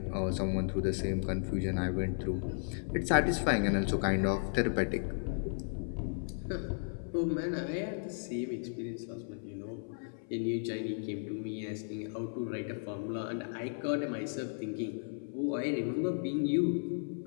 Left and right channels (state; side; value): silent; right; 55 dB below the other